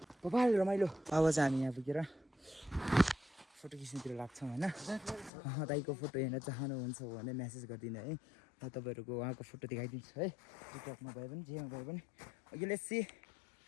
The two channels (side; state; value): right; drops out; at 5.3 s